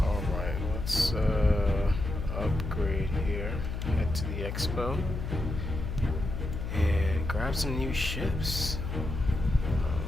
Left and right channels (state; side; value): noise; left; hum, 5 dB below the sound